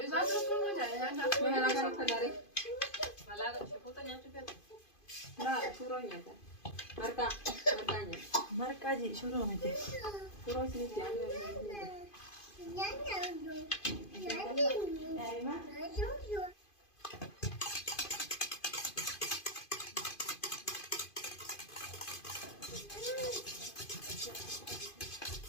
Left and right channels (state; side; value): late; right; 2.5 ms